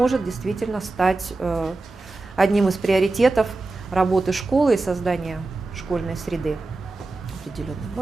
действительно стать одним из приоритетов работы школы и создания школьной среды определенной.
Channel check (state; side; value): quieter; left; 3.3 dB